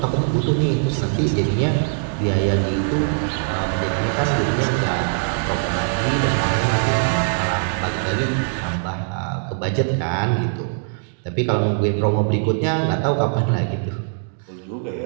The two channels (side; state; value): left; silent; digital silence